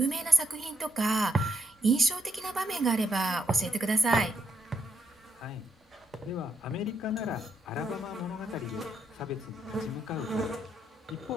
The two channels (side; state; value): both; normal; correlation 0.78